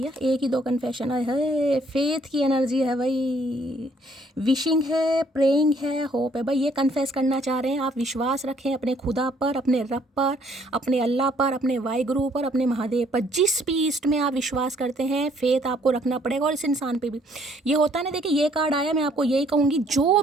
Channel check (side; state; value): both; normal; correlation 0.64